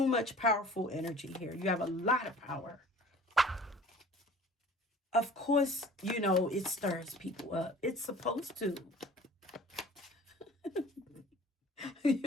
much powerful energy here. You have a lot of power. Of course, it stirs people up. It's supposed to.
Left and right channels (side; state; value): both; normal; correlation 0.47